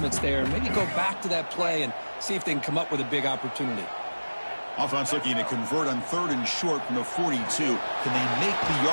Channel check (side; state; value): both; inverted; correlation -1.00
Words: there, maybe go back to that play and see if they can come up with a big opportunity. Offense looking to convert on 3rd and short from the 42. Can they make the